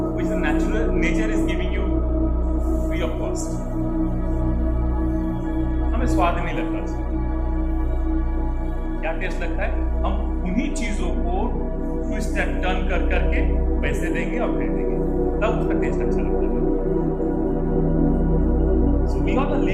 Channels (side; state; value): both; identical; correlation 1.00